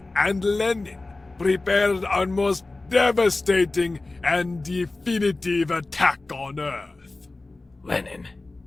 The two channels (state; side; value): quieter; right; 3.2 dB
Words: and Lenin prepared our most devastating and definitive attack on Earth. Lenin,